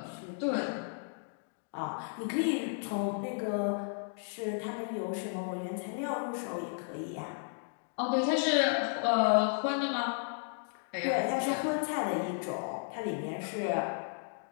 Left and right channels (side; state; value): right; silent; digital silence